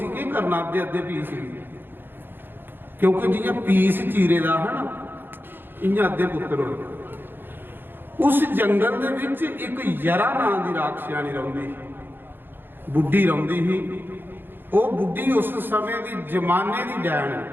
की करना अद्धे अद्धे पीस, क्योंकि जियां पीस चीरे दा है ना इयां अद्धे पुत्र हो। उस जंगल दे विच एक यरा नां दी राक्षसानी रहिंदी, बुढ़ी रहिंदी ही। वो बुढ़ी उस समय की जमाने की डैन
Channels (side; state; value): left; late; 0.099 ms